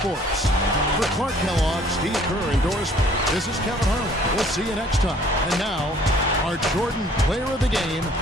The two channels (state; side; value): normal; both; correlation 0.57